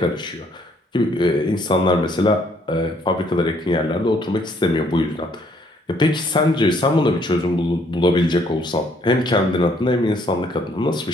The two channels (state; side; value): normal; both; correlation 0.66